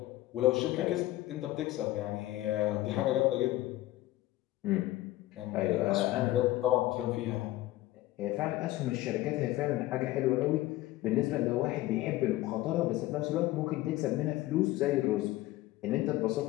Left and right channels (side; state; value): right; quieter; 16.6 dB